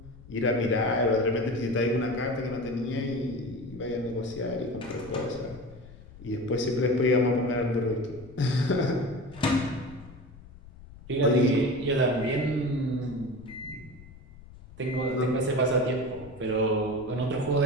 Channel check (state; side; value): noise; left; rumble, 19 dB below the sound